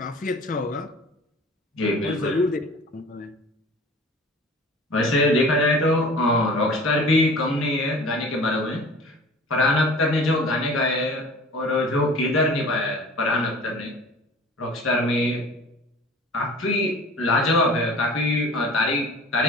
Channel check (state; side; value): normal; both; correlation 0.43